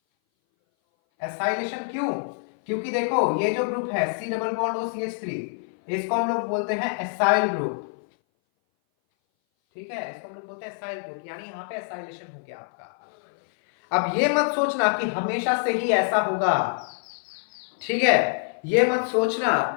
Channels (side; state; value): right; silent; 58 dB below the other